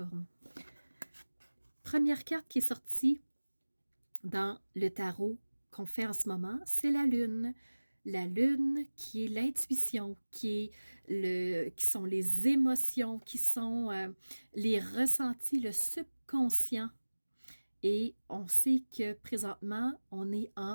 Première carte qui est sortie dans le tarot qu'on fait en ce moment, c'est la Lune. La Lune qui est l'intuition, qui sont les émotions, qui sont les ressentis, le subconscient. Et on sait que présentement, on est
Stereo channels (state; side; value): inverted; both; correlation -1.00